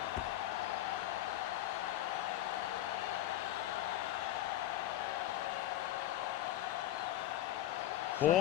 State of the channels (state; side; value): quieter; right; 13.6 dB